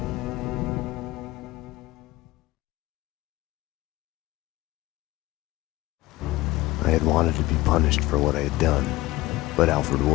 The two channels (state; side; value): quieter; right; 18.7 dB